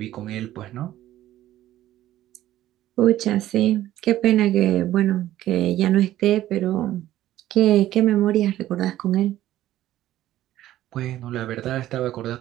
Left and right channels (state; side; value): quieter; left; 13.8 dB